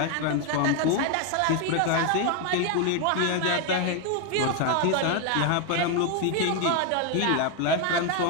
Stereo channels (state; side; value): different; both; correlation 0.01